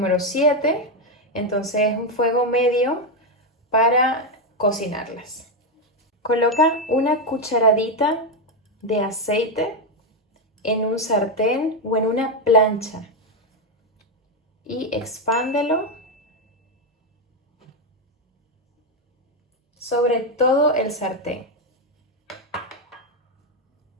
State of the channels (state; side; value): normal; both; correlation 0.06